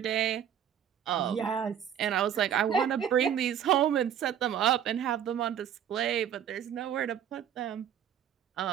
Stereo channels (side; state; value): left; quieter; 9.5 dB